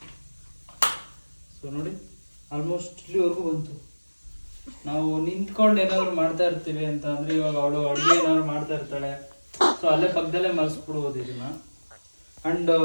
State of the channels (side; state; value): both; inverted; correlation -1.00